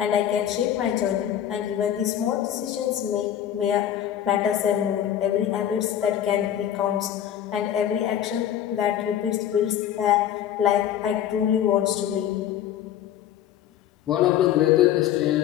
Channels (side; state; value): right; quieter; 10.7 dB